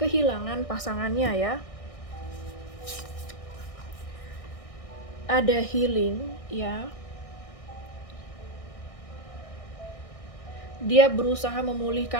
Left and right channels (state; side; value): late; right; 1.6 ms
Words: pasangannya ya. Ada Healing ya. dia berusaha